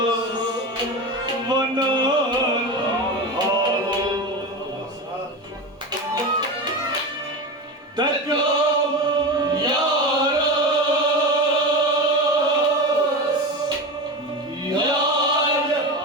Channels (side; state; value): both; normal; correlation 0.23